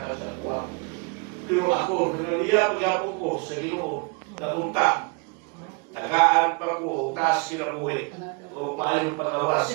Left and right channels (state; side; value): quieter; left; 31.1 dB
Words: sa kuwa. Pero ako nanganiya pagyapon ko sa Ginoo napunta tagaan pa ko taas kinabuhi o maayon